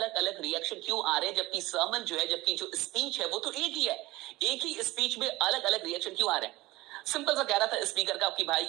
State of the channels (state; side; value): quieter; left; 19.4 dB